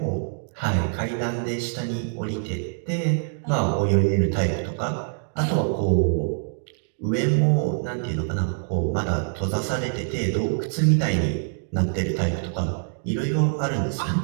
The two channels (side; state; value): left; silent; digital silence